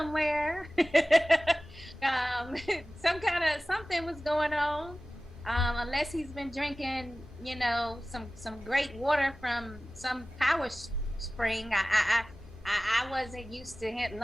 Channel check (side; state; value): both; normal; correlation 0.97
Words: Something was going on. Unless he's been drinking, you know, some great water from some power spring. I wasn't used to